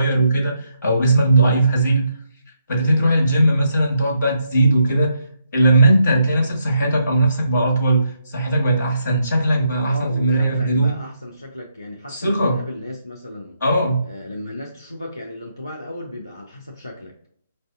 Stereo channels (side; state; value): both; inverted; correlation -0.78